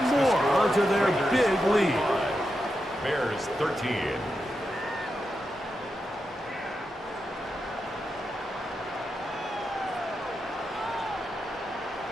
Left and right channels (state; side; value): normal; both; correlation 0.87